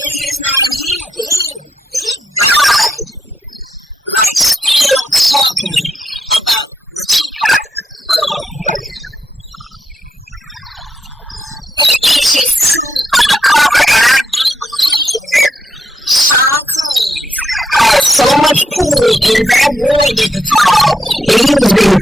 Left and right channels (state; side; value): normal; both; correlation 0.80